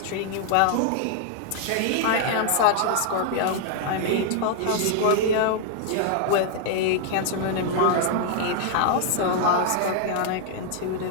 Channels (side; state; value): both; different; correlation 0.00